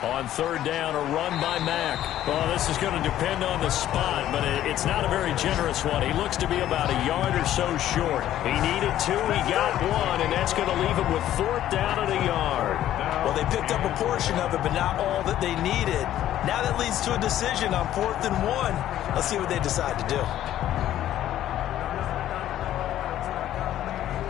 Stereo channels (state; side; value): quieter; right; 12.4 dB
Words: On third down, a run by Mack. Well, this is going to depend on the spot, but it's not a very generous one. He looks to be about a yard or so short. He needed 2, he got 1, and that's going to leave him with 4th down and a yard. Well, they picked up a portion of it, but not all that they needed. Now that leads to a decision on 4th and 1. Let's see what they decide to do.